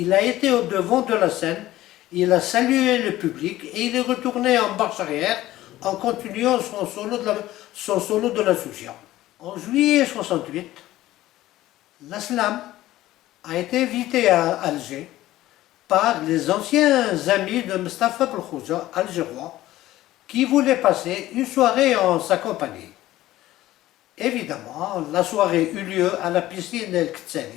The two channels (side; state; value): right; quieter; 15.5 dB